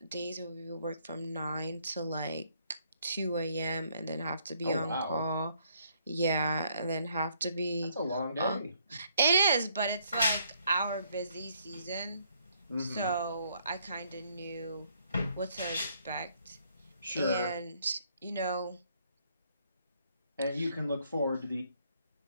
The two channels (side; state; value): both; inverted; correlation -0.69